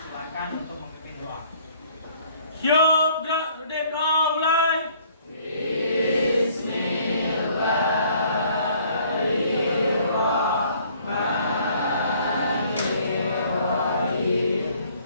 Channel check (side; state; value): both; inverted; correlation -0.59